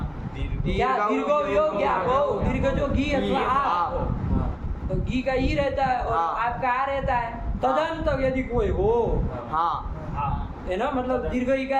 क्या दीर्घो योग क्या हो? दीर्घ जो घी अथवा आ, तो घी का ई रहता है और हाँ। आपका आ रहता है। तदंत यदि कोई हो, हाँ। है ना, मतलब दीर्घ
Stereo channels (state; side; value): identical; both; correlation 1.00